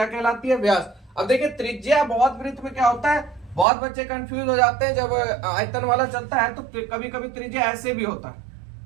कहलाती है? व्यास। अब देखिए, त्रिज्या बहुत वृत्त में क्या होता है, बहुत बच्चे कंफ्यूज हो जाते हैं जब आयतन वाला चलता है, तो कभी कभी त्रिज्या ऐसे भी होता है।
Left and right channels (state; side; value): drops out; left; at 3.7 s